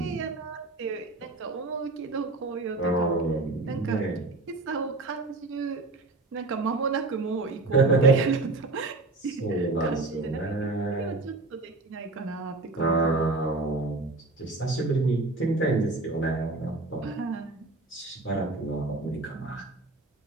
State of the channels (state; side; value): quieter; left; 3.3 dB